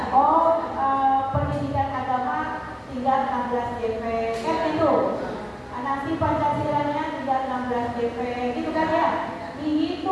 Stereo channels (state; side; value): identical; both; correlation 1.00